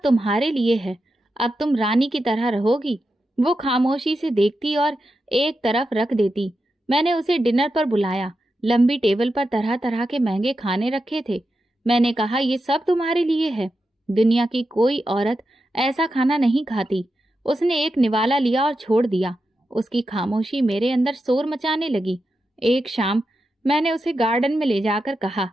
तुम्हारे लिए है, अब तुम रानी की तरह रहोगी। वो खामोशी से देखती और एक तरफ रख देती। मैंने उसे डिनर पर बुलाया। लंबी टेबल पर तरह तरह के महंगे खाने रखे थे। मैंने कहा, ये सब तुम्हारे लिए है, दुनिया की कोई औरत ऐसा खाना नहीं खाती। उसने एक निवाला लिया और छोड़ दिया। उसकी खामोशी मेरे अंदर शोर मचाने लगी। एक शाम मैंने उसे गार्डन में ले जाकर कहा,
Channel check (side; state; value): both; normal; correlation 0.89